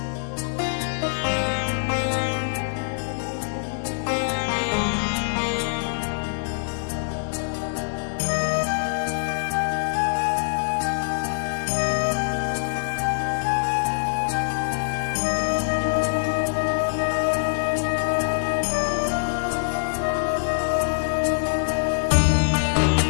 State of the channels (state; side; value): silent; right; digital silence